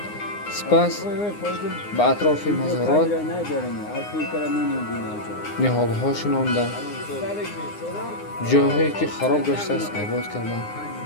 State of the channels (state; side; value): late; right; 9.7 ms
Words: сипас ба атрофи мазорот ниҳолҳо шинонданд, ҷойҳое ки хароб гаштааст обод карданд.